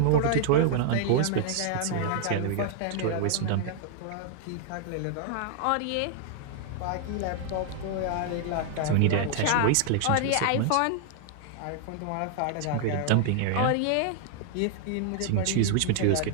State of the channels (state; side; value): different; both; correlation 0.00